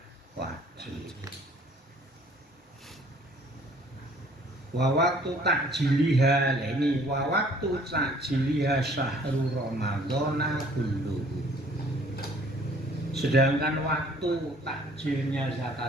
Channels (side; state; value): both; normal; correlation 0.57